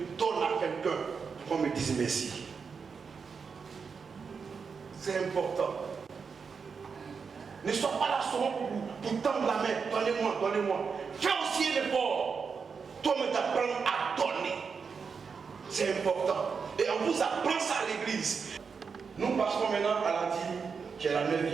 donne à quelqu'un pour qu'on me dise merci. C'est important. Ne sois pas là seulement pour tendre la main. Donnez-moi, donnez-moi. Fais aussi un effort. Toi-même t'apprends à donner. C'est important. Et on vous apprend ça à l'église. Nous passons maintenant à la dîme, qui est la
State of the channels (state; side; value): quieter; left; 5.6 dB